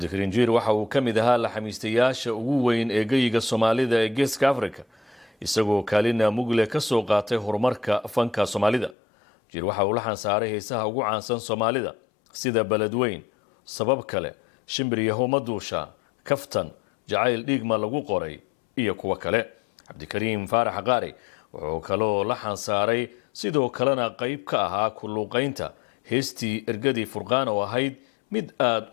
Jiir waxa uu kamid ahaa la xamiistayaasha ugu weyn ee geyga Soomaalida ee Geeska Afrika isagoo kaalina mugle ka soo qaatay horumarka fanka Soomaalida. Jiir waxa uu la xansaaray heesaha ugu caansan Soomaalida sida Baladweyn, Sabab kale, Shimbiriyaho Maduusha, Kaftan, Jacayl Dhiigma lagu qoray iyo kuwa kale. Cabdikariim Faarax Qaari wuxuu kaloo la xansaaray sidoo kalena qayb ka ahaa ku luuqaynta heestii Ergadii Furqaan oo ahayd mid aad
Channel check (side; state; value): right; drops out; at 9.0 s